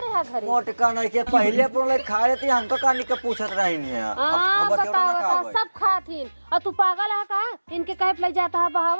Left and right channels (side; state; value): both; inverted; correlation -1.00